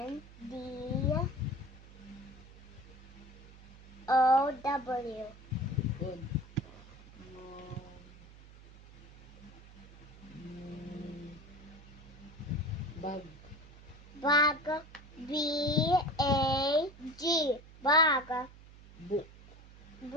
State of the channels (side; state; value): right; noise; hum, 20 dB below the sound